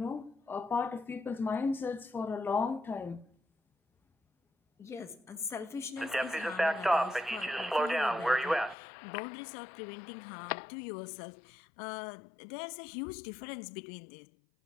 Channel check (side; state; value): right; drops out; at 8.8 s